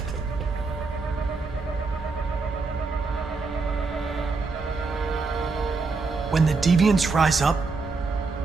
When the deviants rise up,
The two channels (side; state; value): left; quieter; 4.2 dB